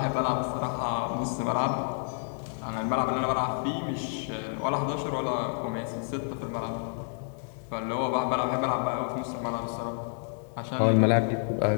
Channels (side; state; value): right; silent; 58 dB below the other